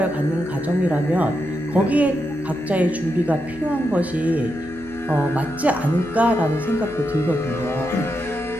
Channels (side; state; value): left; noise; hum, 20 dB below the sound